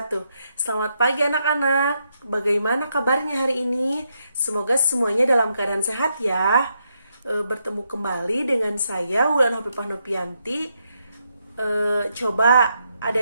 Selamat pagi anak-anak. Bagaimana kabarnya hari ini? Semoga semuanya dalam keadaan sehat ya. Bertemu kembali dengan saya Wulan Hafifah Nopianti. Coba ada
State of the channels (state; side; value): inverted; both; correlation -0.80